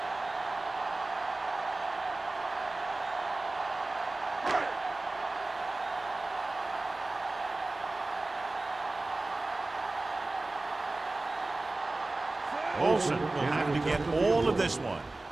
Olsen will have to get all of this one.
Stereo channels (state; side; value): quieter; left; 3.1 dB